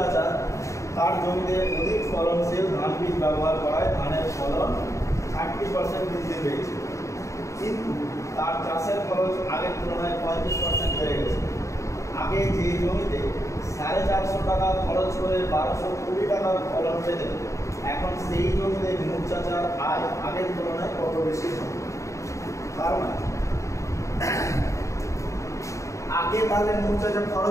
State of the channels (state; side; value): late; right; 0.15 ms